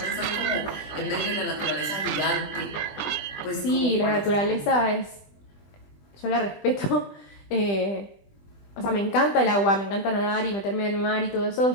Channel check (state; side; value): late; right; 20 ms